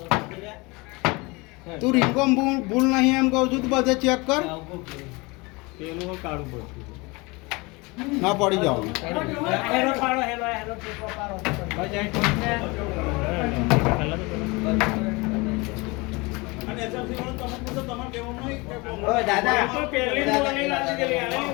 તું રીંગણ ભૂલ નહીં એમ કહું છું. તું બધે ચેક કર. પેલું હું કાઢું પડતું ના પડી જાવ. અને એસએમસી વાળો તમે પૂછો, તમારે કહેવાનું નહીં કે ઓ દાદા પણ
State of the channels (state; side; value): quieter; right; 25.6 dB